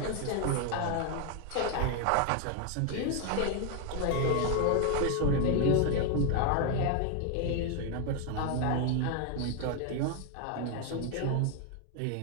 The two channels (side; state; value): both; different; correlation 0.01